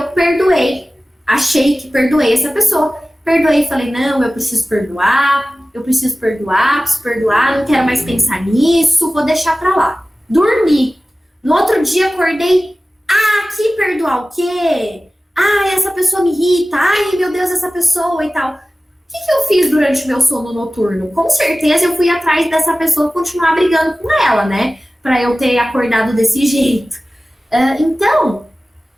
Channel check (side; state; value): both; normal; correlation 0.97